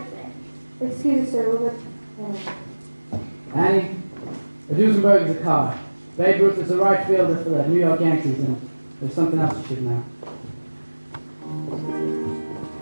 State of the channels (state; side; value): inverted; both; correlation -1.00